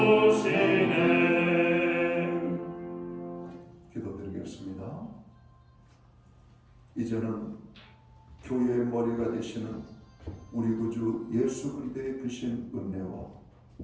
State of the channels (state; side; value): identical; both; correlation 1.00